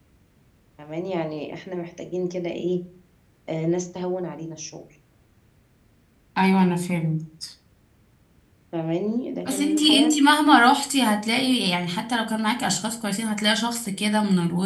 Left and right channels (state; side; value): identical; both; correlation 1.00